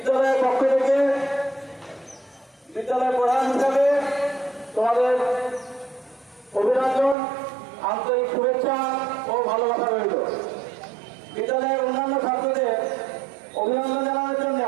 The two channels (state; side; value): drops out; left; at 7.2 s